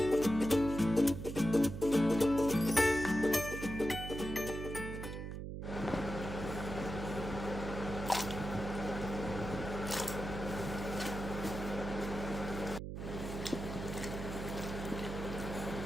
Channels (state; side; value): noise; right; hum, 6 dB below the sound